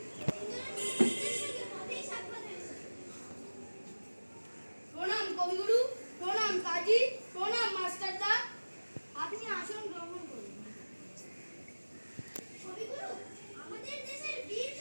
তিনজনের শিক্ষকদের সঙ্গে পথেই সাক্ষাৎ হয়েছে। প্রণাম কবিগুরু, প্রণাম কাজী, প্রণাম মাস্টারদা। আপনি আসন গ্রহণ করুন। কবিগুরু, আমাদের দেশের বীর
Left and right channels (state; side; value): inverted; both; correlation -1.00